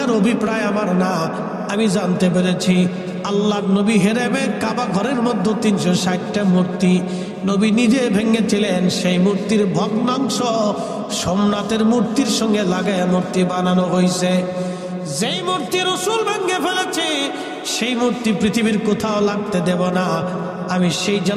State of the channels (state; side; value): identical; both; correlation 1.00